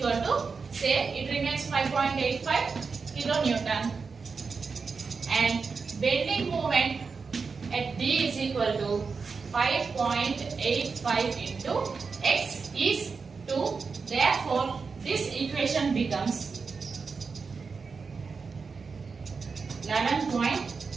to, say it remains 5.85 kilonewton, and bending moment at D is equal to 5.85 into x is 2. Therefore, this equation becomes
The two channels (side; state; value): left; quieter; 5.0 dB